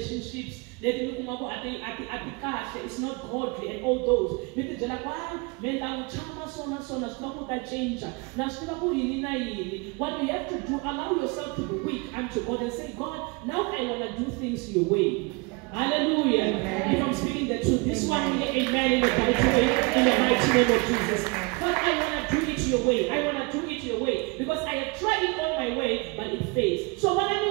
It's not godly and all those. What we have to do, allow yourself to be weak unto God and say, God, now I want to do things your way. Hallelujah. If I'm speaking the truth, this one, amen, in the mighty name of Jesus. But I want to do it your way. I want to do it your way. Because I have tried it all my way, but it fails. So when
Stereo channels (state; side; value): quieter; left; 28.4 dB